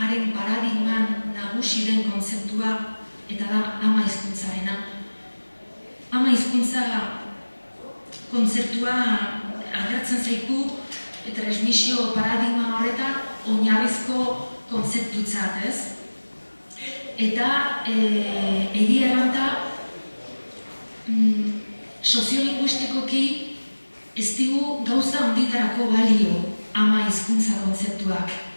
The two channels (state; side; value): inverted; both; correlation -1.00